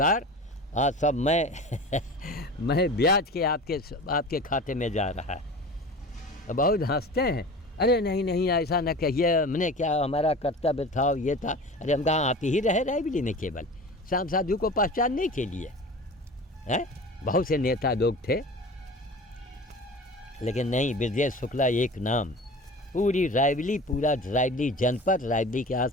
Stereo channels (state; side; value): normal; both; correlation 0.36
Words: आज सब मैं ब्याज के आपके खाते में जा रहा है। बहुत हंसते हैं, अरे नहीं ऐसा न कहिए, हमने क्या, हमारा कर्तव्य था ये था। अरे हम कहाँ आते ही रहे रायबरेली में केवल श्याम साधु को पहचानने के लिए हैं। बहुत से नेता लोग थे, लेकिन नहीं, ब्रजेश शुक्ला एक नाम। पूरी रायबरेली, पूरा रायबरेली जनपद, रायबरेली के